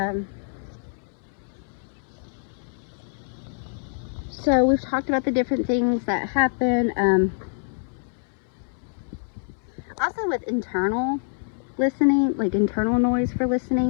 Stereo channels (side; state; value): right; silent; 61 dB below the other